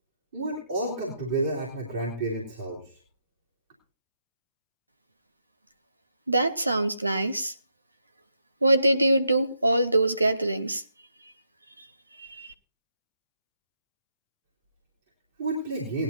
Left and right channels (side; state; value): both; inverted; correlation -0.79